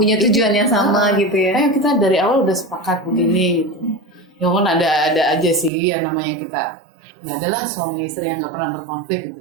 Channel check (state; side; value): drops out; left; at 5.7 s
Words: tujuan yang sama gitu ya. Ayo kita dari awal udah sepakat begini gitu. Ya kan ada aja sih yang namanya kita. Nggak adalah suami istri yang nggak pernah berkonflik